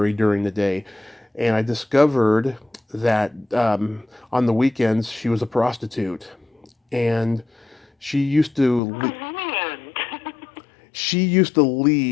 during the day, and I discovered that on the weekends she was a prostitute, and she used to le- Brilliant. she used to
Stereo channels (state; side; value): drops out; right; at 8.8 s